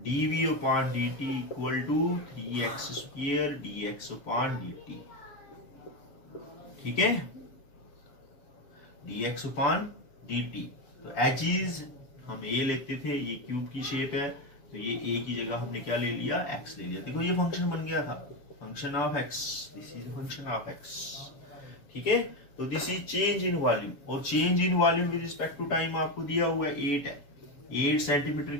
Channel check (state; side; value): late; right; 7.1 ms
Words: dv upon dt equal to 3x square dx upon dt। ठीक है, dx अपॉन dt, तो एजिज हम ए लेते थे, ये क्यूब की शेप है, तो ये ए की जगह हमने क्या ले लिया, x ले लिया। देखो ये फंक्शन बन गया था, function of x, this is function of x। ठीक है, तो this is change in volume, और change in volume with respect to time आपको दिया हुआ है 8 है, 8 सेंटीमीटर